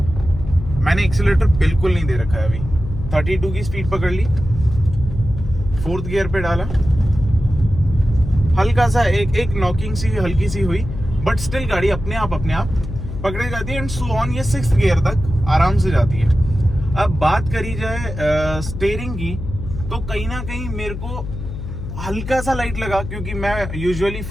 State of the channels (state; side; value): noise; left; hum, 8 dB below the sound